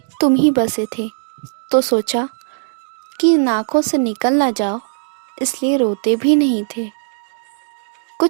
तुम ही बसे थे, तो सोचा कि इन आँखों से निकल ना जाओ, इसलिए रोते भी नहीं थे।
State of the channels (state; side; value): silent; left; digital silence